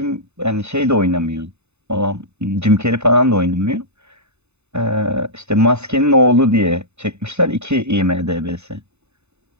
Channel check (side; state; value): left; late; 0.81 ms